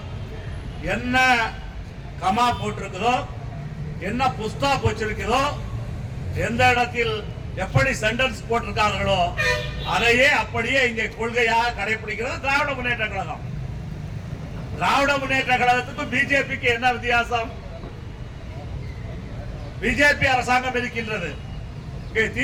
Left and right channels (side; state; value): both; identical; correlation 1.00